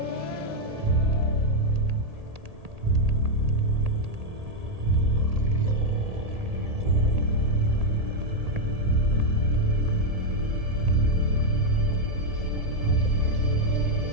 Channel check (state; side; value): late; left; 1.8 ms